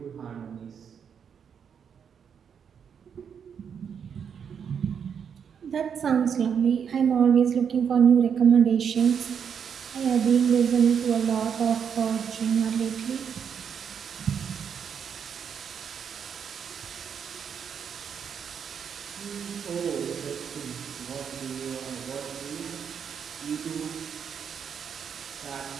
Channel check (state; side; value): quieter; left; 7.4 dB